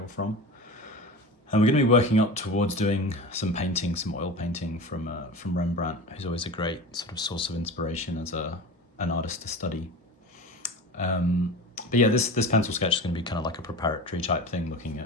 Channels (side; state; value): both; normal; correlation 0.31